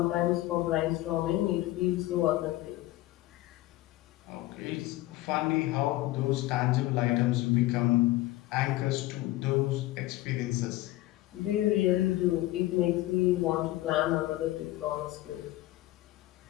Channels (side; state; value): right; quieter; 17.0 dB